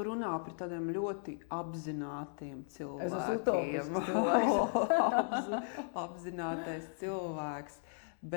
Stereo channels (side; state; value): right; silent; digital silence